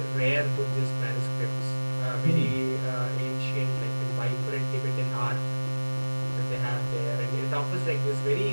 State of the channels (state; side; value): inverted; both; correlation -1.00